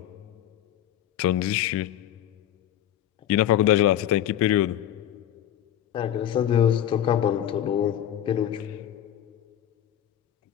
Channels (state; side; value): quieter; right; 11.1 dB